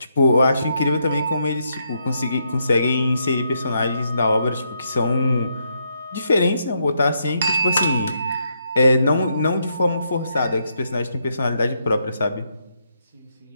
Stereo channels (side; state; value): both; inverted; correlation -0.78